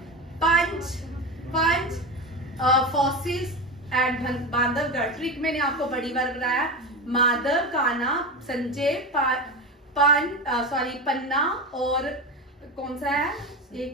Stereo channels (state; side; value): normal; both; correlation 0.21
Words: पंच फॉसिल्स एट बांधवगढ़। ट्रिक मैंने आपको बड़ी बार बताया। माधव, कान्हा, संजय, पन्ना और कौन सा है?